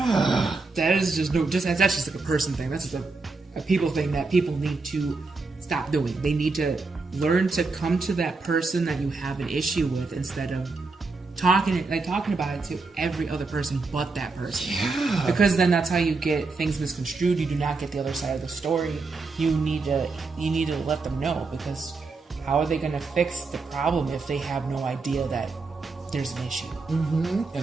That is that's just like a person thing. That's just a people thing that people need to stop doing. They need to learn to come to that person that you have an issue with instead of talking about it to every other person but that person. Yeah. Because then that's how you get things misconstrued. You do not get the other side of the story. You need to let them know, because how are they going to fix the problem if they have no idea that there's an issue?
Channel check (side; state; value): left; quieter; 3.9 dB